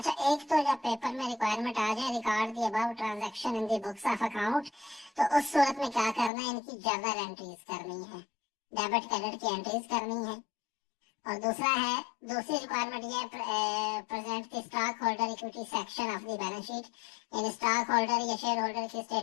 एक तो जब पेपर में रिक्वायरमेंट आ जाए record the above transaction in the books of account, तो उस सूरत में क्या करना है, इनकी जर्नल एंट्रीज करनी है, डेबिट क्रेडिट की एंट्रीज करनी है। और दूसरा है, दूसरी रिक्वायरमेंट ये present the stock holder equity section of the balance sheet, in stock holder या शेयर होल्डर की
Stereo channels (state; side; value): drops out; right; at 6.3 s